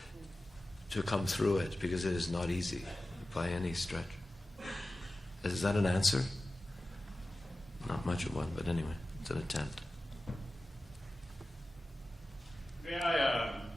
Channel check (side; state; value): both; normal; correlation 0.95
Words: to come through it, because it is not easy by any stretch. Is that an answer? Not much of one, but anyway, it's an attempt. May I